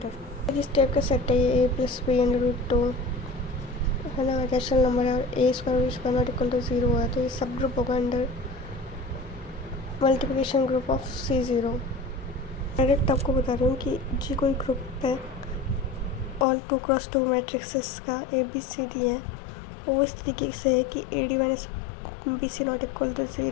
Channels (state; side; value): drops out; right; at 16.4 s